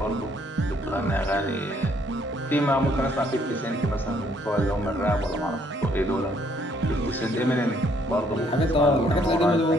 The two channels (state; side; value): normal; both; correlation 0.67